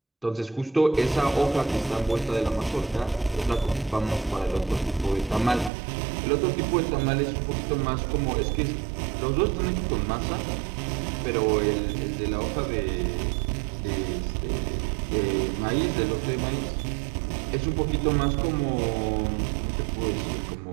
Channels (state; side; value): drops out; left; at 5.7 s